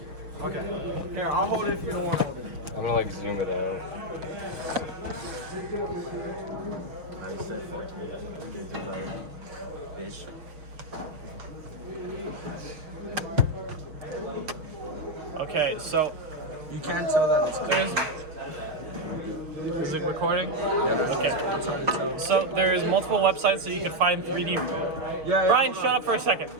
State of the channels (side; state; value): left; late; 6.4 ms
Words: Okay. Here, I'll hold it if you don't want to hold it. I'm gonna like zoom it out. Okay, so You can't tell that it's there's. Is it recording? Okay. So there's multiple websites that you can find 3D. Yeah. Brian, shut up for a second.